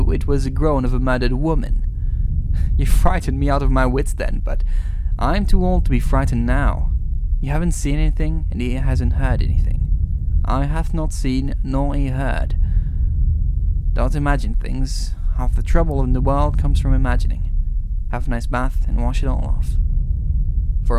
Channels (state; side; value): identical; both; correlation 1.00